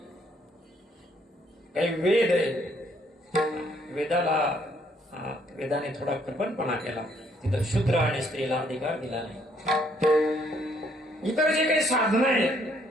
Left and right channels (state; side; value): normal; both; correlation 0.67